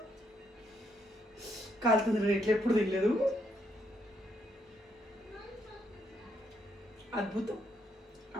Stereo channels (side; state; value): both; normal; correlation 0.75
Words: కాలుతుంది. రేట్లు ఎప్పుడు తినలేదు, అద్భుతం